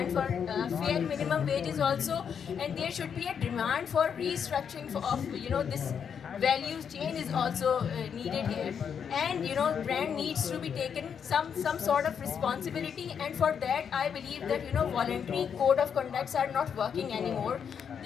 for fair minimum wages also, and there should be a demand for restructuring of this value chain is also needed here. And brand needs to be taken some sort of responsibility, and for that I believe that voluntary code of conducts are not working anymore.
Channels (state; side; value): quieter; right; 7.4 dB